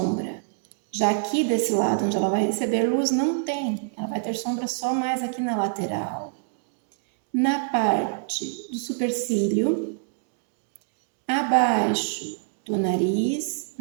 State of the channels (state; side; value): silent; left; digital silence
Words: Já aqui desse lado, onde ela vai receber luz, não tem. Ela vai ter sombra só mais aqui na lateral. Na parte do supercílio, abaixo do nariz,